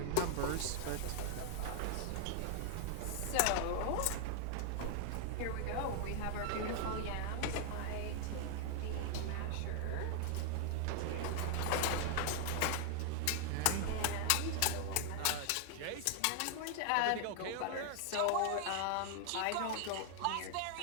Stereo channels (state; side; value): different; both; correlation 0.00